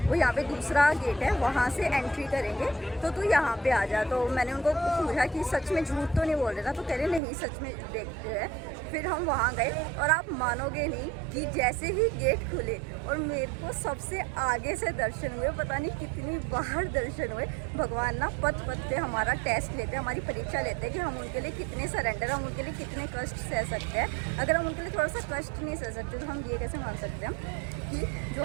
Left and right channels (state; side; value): drops out; left; at 7.2 s